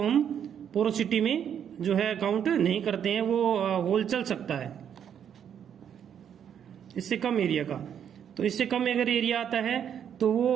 हम पोरोसिटी में जो है काउंट नहीं करते हैं, वो होल चल सकता है इससे कम एरिया का। तो इससे कम अगर एरिया आता है तो वो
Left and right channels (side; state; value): left; quieter; 8.7 dB